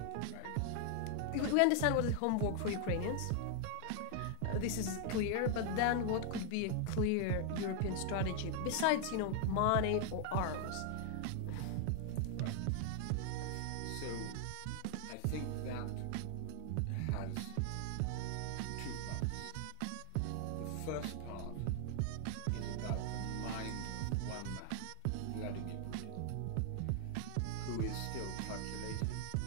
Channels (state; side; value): different; both; correlation 0.00